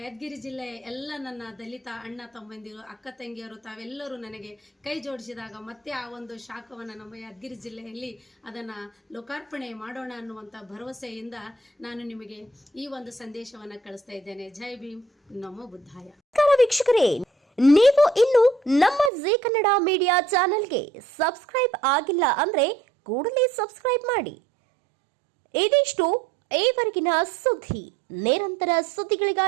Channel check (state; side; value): drops out; left; at 19.1 s